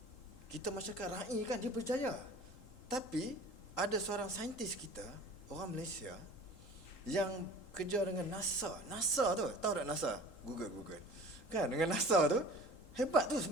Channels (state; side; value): late; right; 3.8 ms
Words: Kita masyarakat rakyat kan, dia berjaya. Tapi ada seorang saintis kita, orang Malaysia, yang kerja dengan NASA. NASA tu, tahu tak NASA? Google. Kan, dengan NASA tu, hebat tu,